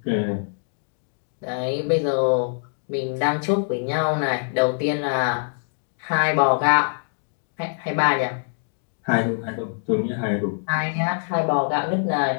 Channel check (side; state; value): right; silent; digital silence